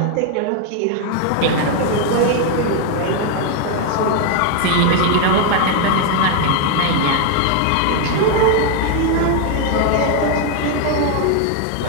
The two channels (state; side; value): different; both; correlation 0.01